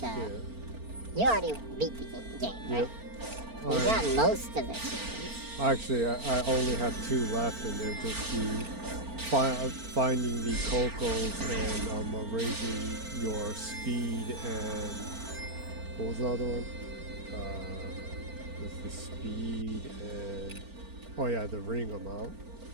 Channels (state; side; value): late; left; 4.4 ms